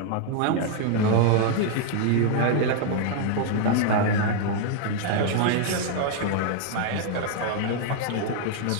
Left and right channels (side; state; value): both; different; correlation -0.01